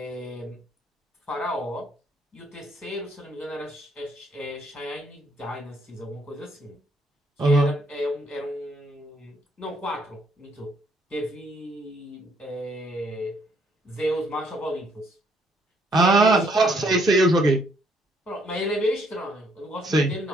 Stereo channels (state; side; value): normal; both; correlation 0.68